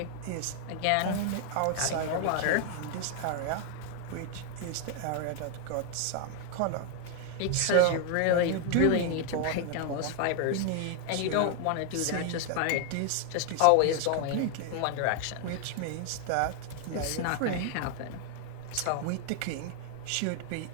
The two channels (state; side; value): different; both; correlation 0.00